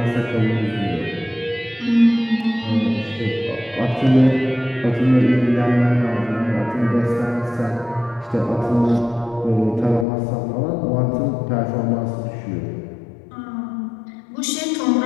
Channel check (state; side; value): drops out; right; at 10.1 s